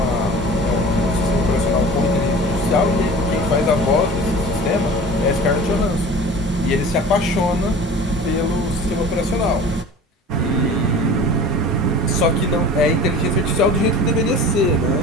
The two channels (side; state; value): both; normal; correlation 0.40